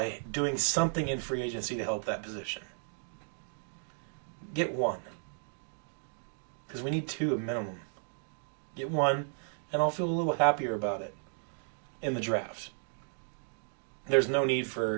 doing something in free agency to help that position. Get one. Because we need two minimum. Get one, and I'll feel a little happier about it in the draft. There's no need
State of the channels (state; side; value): silent; left; digital silence